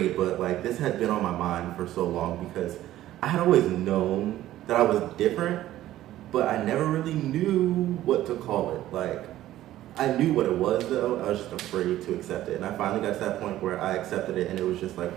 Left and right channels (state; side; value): quieter; left; 14.0 dB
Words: but like this had been on my mind for so long because I had always known that I was different, but I never really knew what to call it. Like, I knew what it was though, I was just afraid to accept it. And I finally got to that point where I accepted it, and it was just like